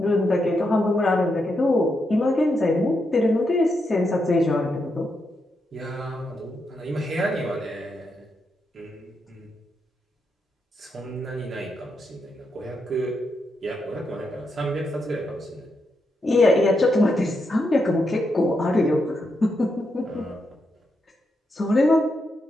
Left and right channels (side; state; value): both; normal; correlation 0.83